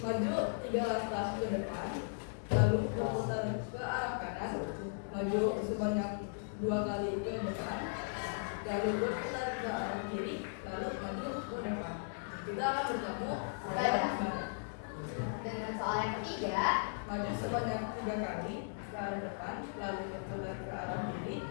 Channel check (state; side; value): silent; right; digital silence